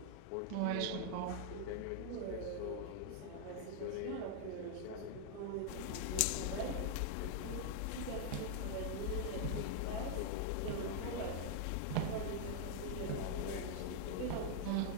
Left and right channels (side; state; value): both; different; correlation 0.00